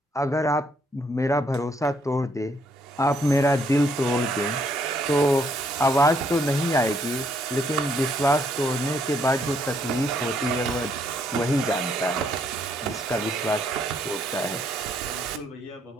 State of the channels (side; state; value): both; normal; correlation 0.70